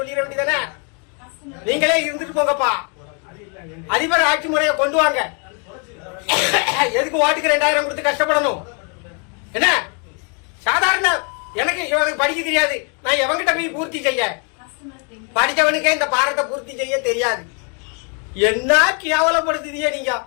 சொல்லிட வேண்டியதானே. நீங்களே இருந்துட்டு போங்கப்பா, அதிபர் ஆட்சி முறையை கொண்டு வாங்க. எதுக்கு ஓட்டுக்கு 2000 கொடுத்து கஷ்டப்படணும்? என்ன சாதாரண எனக்கு படிக்க தெரியாது, நான் எவங்கிட்ட போய் பூர்த்தி செய்ய? படிச்சவனுக்கே இந்த பாரத்தை பூர்த்தி செய்ய தெரியாது. என்ன கேவலப்படுத்துதியே நீங்க?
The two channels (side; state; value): right; quieter; 38.0 dB